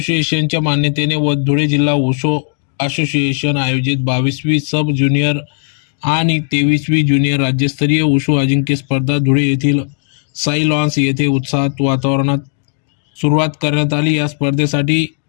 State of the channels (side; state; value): right; silent; digital silence